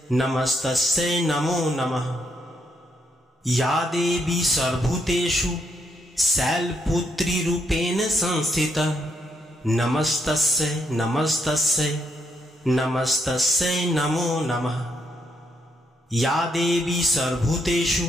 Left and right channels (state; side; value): normal; both; correlation 0.76